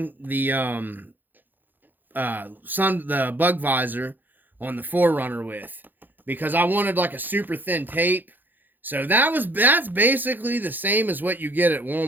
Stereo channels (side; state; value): left; late; 0.088 ms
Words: the the bug visor on the 4Runner with, because I wanted like a super thin tape. So that's basically the same as what you get at